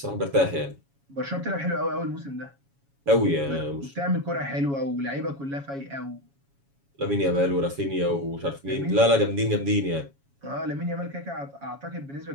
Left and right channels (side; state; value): left; late; 7.2 ms